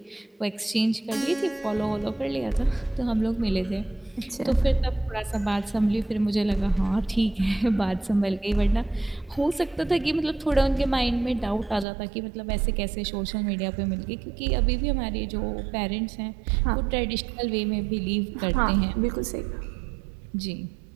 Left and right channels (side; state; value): left; drops out; at 11.9 s